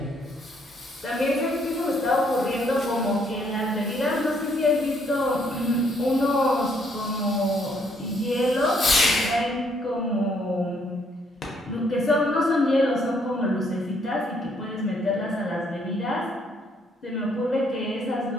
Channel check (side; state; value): both; normal; correlation 0.69